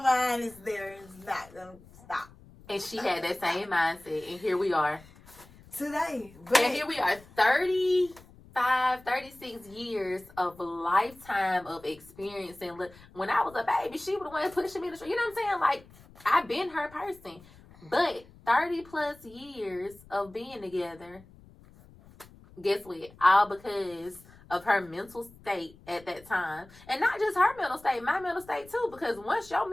mind, it's there. It's not going to stop. And she had that same mindset. And here we are. Today. And here we are. 35, 36 years of lifetime of experience. And look, when I was a baby, she was the one pushing me to the street. You know what I'm saying? Like, I've been her person. But 30 plus years of being together, guess what? All because of her mental state at that time. And not just her mental state, my mental state too. Because once your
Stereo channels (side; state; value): left; noise; rumble, 23 dB below the sound